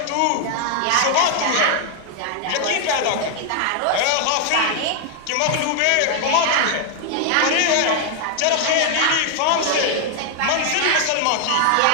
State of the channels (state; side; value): different; both; correlation 0.00